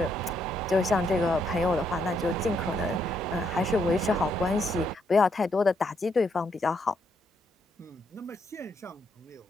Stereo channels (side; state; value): both; normal; correlation 0.75